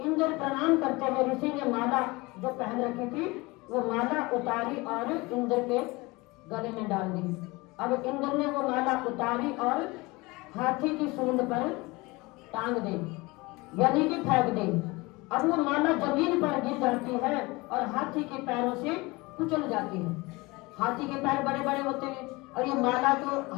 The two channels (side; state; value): right; quieter; 23.5 dB